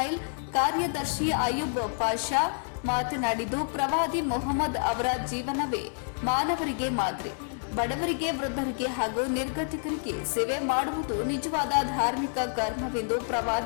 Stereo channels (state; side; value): silent; right; digital silence